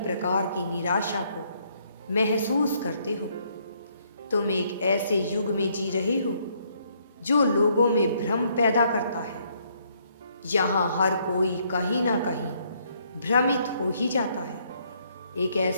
की निराशा को महसूस करते हो। तुम एक ऐसे युग में जी रहे हो जो लोगों में भ्रम पैदा करता है। यहाँ हर कोई कहीं ना कहीं भ्रमित हो ही जाता है। एक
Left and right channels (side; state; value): both; inverted; correlation -0.70